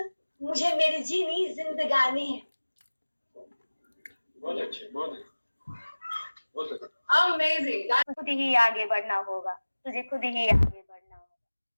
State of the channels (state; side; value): inverted; both; correlation -1.00